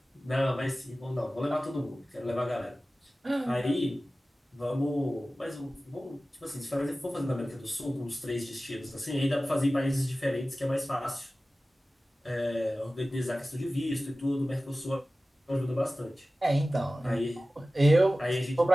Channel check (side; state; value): both; normal; correlation 0.96